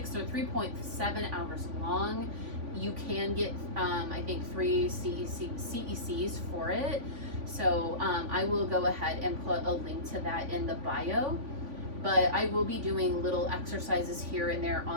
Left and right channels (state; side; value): late; left; 3.5 ms